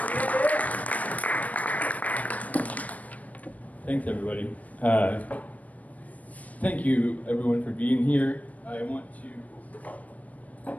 Thanks, everybody. Thank you, everyone, for being here. I want to.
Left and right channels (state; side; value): late; right; 0.071 ms